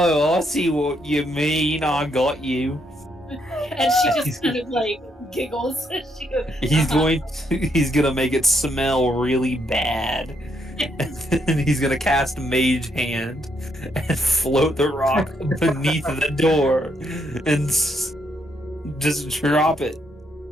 I see what you mean. I got you. And she just kind of like giggles. She goes, He's gonna make it smell really bad. And he's gonna cast Mage Hand and float the rock beneath the door and just drop it.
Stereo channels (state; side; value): normal; both; correlation 0.75